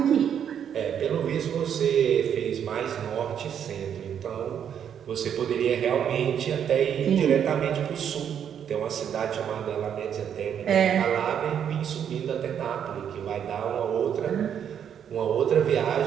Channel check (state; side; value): quieter; left; 8.7 dB